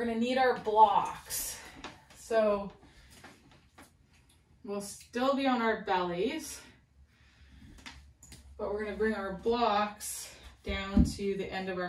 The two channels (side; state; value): both; identical; correlation 1.00